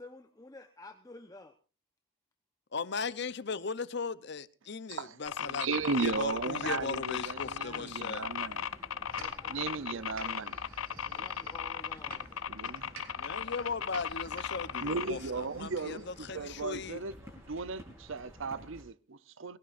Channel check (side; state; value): both; normal; correlation -0.13